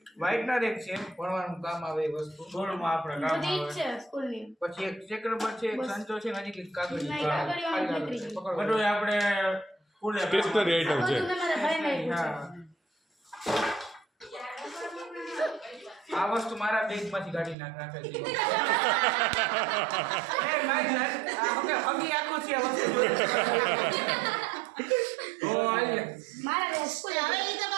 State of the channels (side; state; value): left; drops out; at 17.6 s